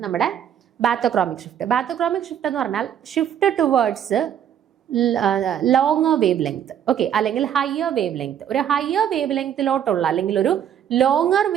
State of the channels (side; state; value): left; quieter; 9.5 dB